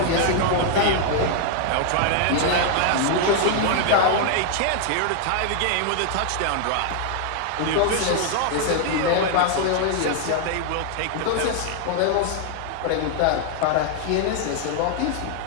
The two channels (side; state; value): both; different; correlation 0.00